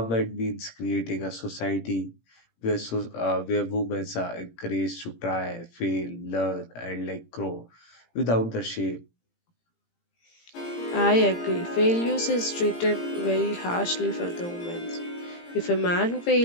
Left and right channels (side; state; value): right; late; 17 ms